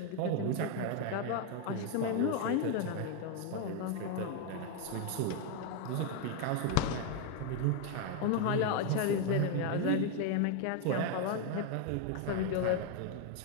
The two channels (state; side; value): different; both; correlation 0.01